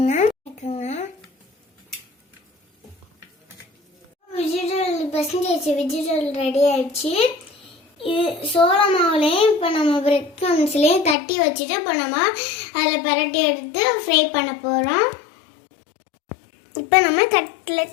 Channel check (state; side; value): drops out; right; at 11.2 s